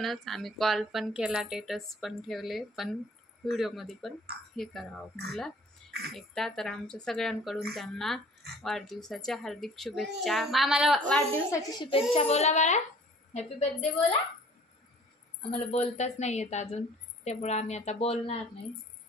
आम्ही कॉल पण केला, स्टेटस पण ठेवले, पण व्हिडिओमध्ये पण हे करावं म्हटलं एकदा. तर आमच्या सगळ्यांकडून त्यांना वाढदिवसाच्या हार्दिक शुभेच्छा. मामाला वाढदिवसाची शुभेच्छा बोला बाळा, हॅपी बर्थडे बोला. आम्हाला बोलताच नाही येत अजून, त्यामुळं आम्ही आता बोलणार नाही.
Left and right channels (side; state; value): both; normal; correlation 0.51